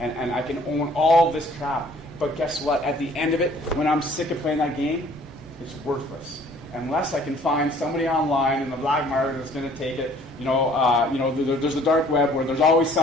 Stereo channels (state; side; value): normal; both; correlation 0.56